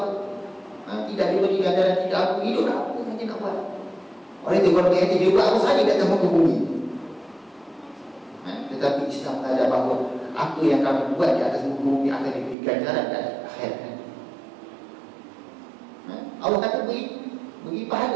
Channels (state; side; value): drops out; left; at 12.6 s